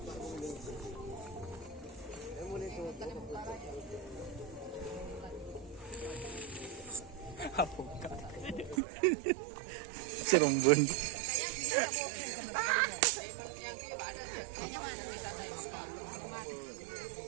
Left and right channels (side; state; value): left; drops out; at 8.8 s